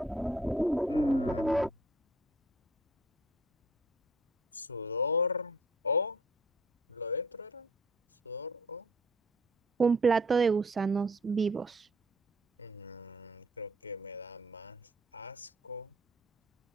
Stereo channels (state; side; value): normal; both; correlation 0.54